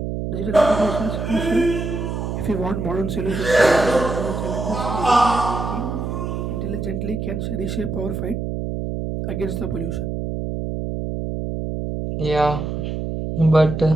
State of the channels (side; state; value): right; noise; hum, 3 dB below the sound